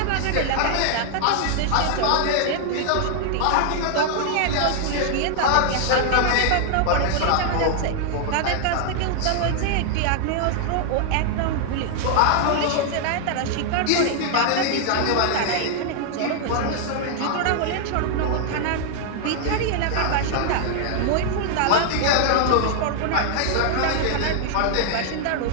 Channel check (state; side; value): different; both; correlation 0.00